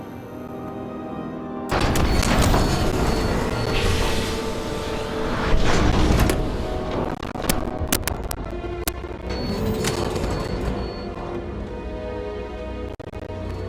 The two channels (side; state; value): both; identical; correlation 1.00